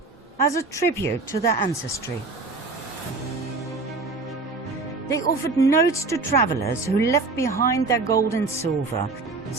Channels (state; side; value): quieter; left; 3.6 dB